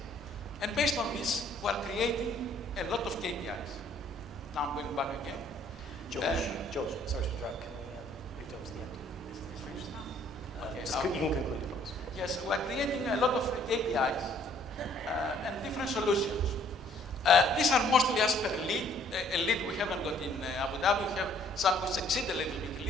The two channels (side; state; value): both; normal; correlation 0.61